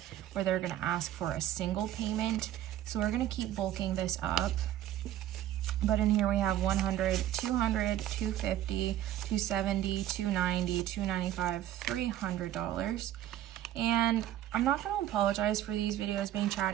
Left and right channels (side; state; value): left; quieter; 12.5 dB